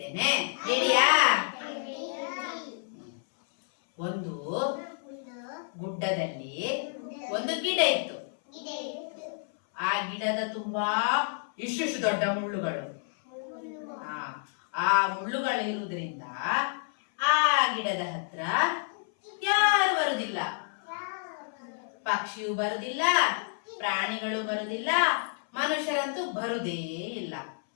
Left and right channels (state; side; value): silent; right; 58 dB below the other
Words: ರೆಡಿಯಾ? ಒಂದು ಗುಡ್ಡದಲ್ಲಿ ಒಂದು ಗಿಡ ಇತ್ತು. ಆ ಗಿಡದ ತುಂಬಾ ಇಷ್ಟು ದೊಡ್ಡ ಮುಳ್ಳುಗಳು. ಆ ಮುಳ್ಳುಗಳು ಇರುವುದರಿಂದ ಆ ಗಿಡದ ಹತ್ರ ಯಾರು ಬರುದಿಲ್ಲ. ಪಕ್ಷಿಯು ಬರುದಿಲ್ಲ, ಪ್ರಾಣಿಗಳು ಬರುದಿಲ್ಲ, ಮನುಷ್ಯರಂತೂ ಬರುದೇ ಇಲ್ಲ.